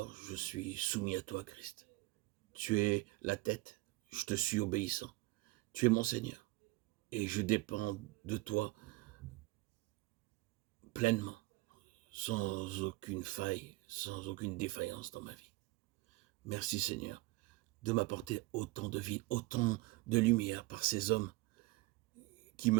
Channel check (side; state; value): left; quieter; 21.2 dB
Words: je suis soumis à toi, Christ. Tu es la tête, je te suis obéissant. Tu es mon Seigneur et je dépends de toi pleinement, sans aucune faille, sans aucune défaillance dans ma vie. Merci Seigneur de m'apporter autant de vie, autant de lumière par ces hommes qui